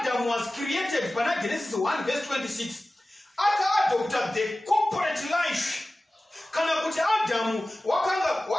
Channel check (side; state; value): both; normal; correlation 0.96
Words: was created pana Genesis 1 verse 26 aka-adopta the corporate life. Kana kuti Adamu